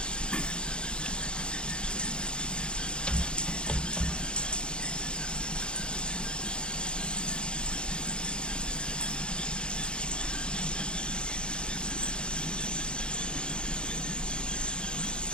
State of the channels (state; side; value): late; right; 0.052 ms